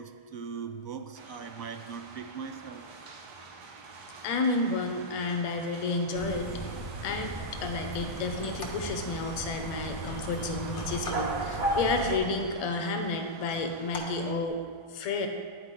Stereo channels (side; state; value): right; late; 1.7 ms